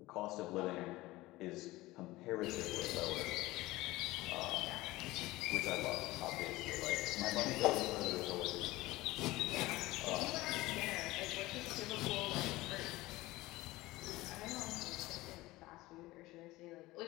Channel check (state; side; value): quieter; right; 19.0 dB